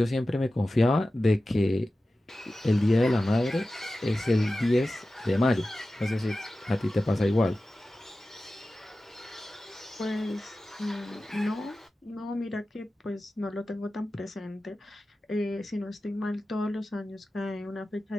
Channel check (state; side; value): normal; both; correlation 0.95